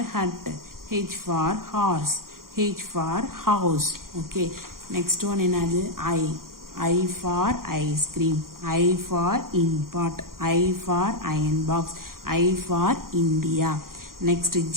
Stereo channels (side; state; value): left; late; 0.92 ms